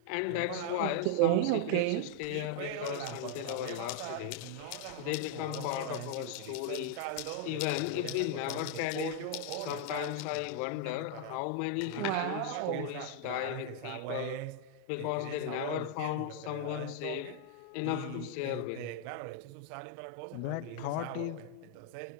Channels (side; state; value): both; different; correlation 0.00